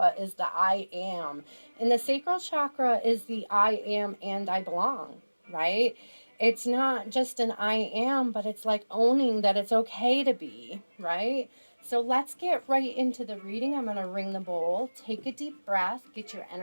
is the I am. And the sacral chakra is the I am and I belong, right? It's not just an I am, but it's like owning that it's okay to be, right? So let's get right into the reading. I'm going to ring the bowl. Take a deep breath. Get your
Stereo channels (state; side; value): inverted; both; correlation -1.00